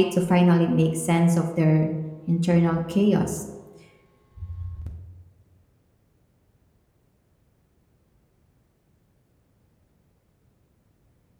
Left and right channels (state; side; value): identical; both; correlation 1.00